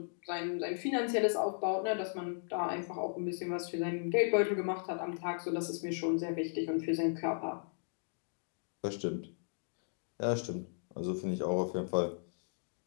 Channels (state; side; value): silent; right; digital silence